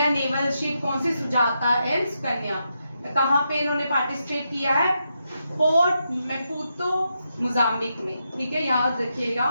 नेवल शिप कौन सी? सुजाता एंड सुकन्या। कहाँ पे इन्होंने पार्टिसिपेट किया है? पोर्ट मैपुतो मोजाम्बिक में, ठीक है, याद रखिएगा।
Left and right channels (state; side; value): inverted; both; correlation -0.84